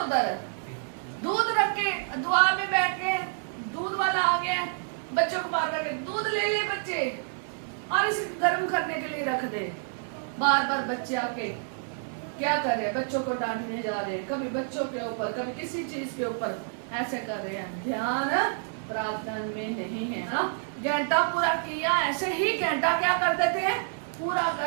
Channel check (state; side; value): silent; left; digital silence